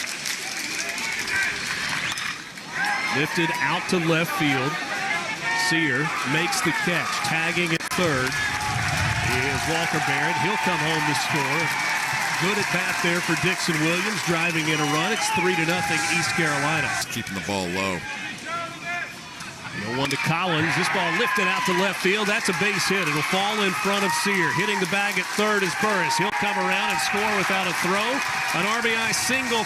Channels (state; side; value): identical; both; correlation 1.00